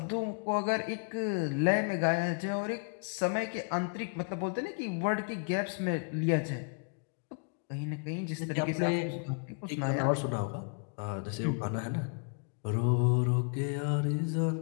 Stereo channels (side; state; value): right; quieter; 38.7 dB